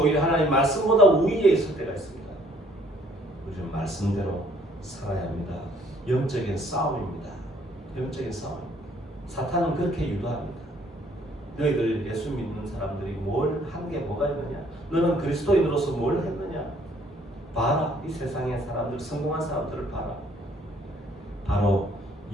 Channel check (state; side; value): normal; both; correlation 0.62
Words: 하나님 말씀보다 우위에 있을 때가 있습니다. 우리는 말씀대로 살아야 합니다. 영적인 싸움입니다. 영적인 싸움. 사탄은 그렇게 유도합니다. 너희들 예수 믿는 사람들이 뭘 한 게 뭐가 있느냐? 너는 그리스도인으로서 뭘 했느냐? 봐라, 이 세상의 사람들, 성공한 사람들을 봐라. 바로